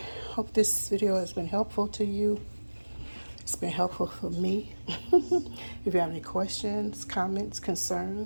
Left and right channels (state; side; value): inverted; both; correlation -1.00